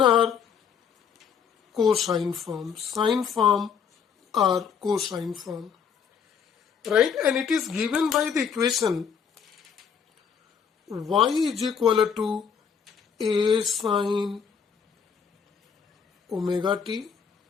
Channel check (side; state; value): right; quieter; 6.9 dB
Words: or cosine form, sine form or cosine form, right? And it is given by the equation y is equal to a sine omega t,